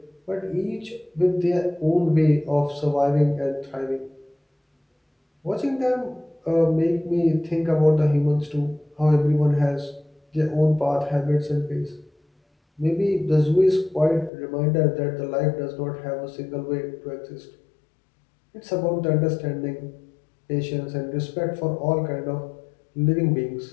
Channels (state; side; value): drops out; right; at 14.3 s